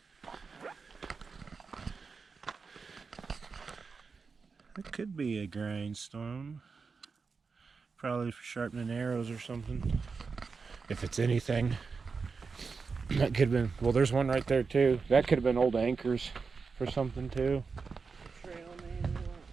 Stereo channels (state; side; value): quieter; left; 4.9 dB